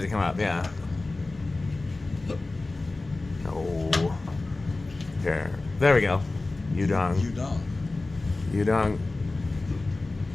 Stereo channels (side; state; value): right; quieter; 3.2 dB